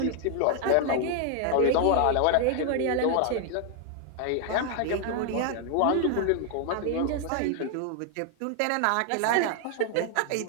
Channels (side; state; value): both; different; correlation 0.00